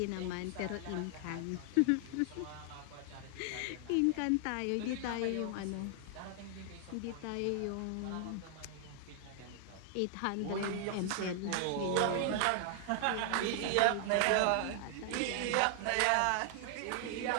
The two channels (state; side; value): different; both; correlation 0.00